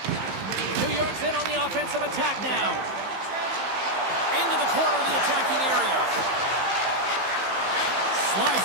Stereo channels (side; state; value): left; late; 15 ms